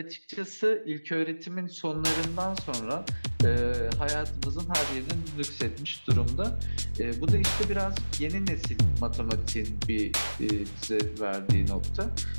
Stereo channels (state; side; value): inverted; both; correlation -1.00